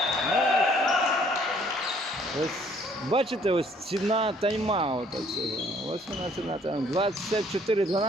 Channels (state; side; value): normal; both; correlation 0.61